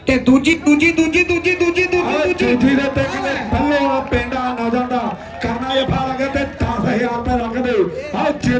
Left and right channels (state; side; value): identical; both; correlation 1.00